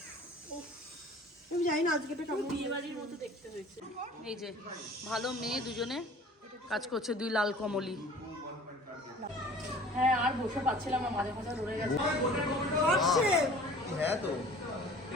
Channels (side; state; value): both; normal; correlation 0.47